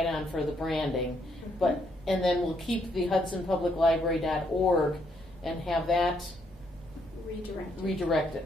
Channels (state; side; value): normal; both; correlation 0.73